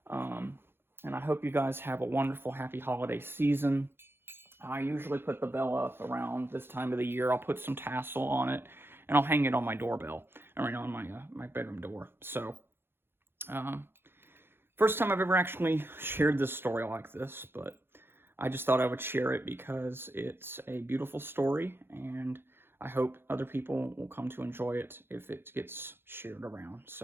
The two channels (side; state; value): left; late; 0.11 ms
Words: And I hope you guys have a wonderful, happy holiday season. I usually put the bell up around this time of the year. I'll put some tassel on it, and I'll hang it on my doorbell, or on my bedroom door. So, first time I've ever actually shared this story like this, but I just thought I would share it because it's a beautiful story, and I hope other people will come to enjoy it if it gets shared around.